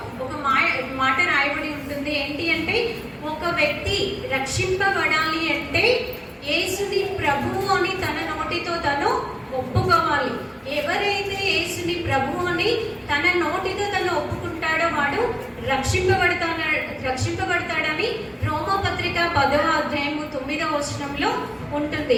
ఒక మాట రాయబడి ఉంటుంది. ఏంటి అంటే ఒక వ్యక్తి రక్షింపబడాలి అంటే యేసుని ప్రభువు అని తన నోటితో తను ఒప్పుకోవాలి. ఎవరైతే యేసుని ప్రభువు అని తన నోటితో తను ఒప్పుకుంటాడో వాడు రక్షింపబడతాడని రోమా పత్రిక 10వ అధ్యాయము 9వ వచనంలో ఉంటుంది.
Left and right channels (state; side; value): identical; both; correlation 1.00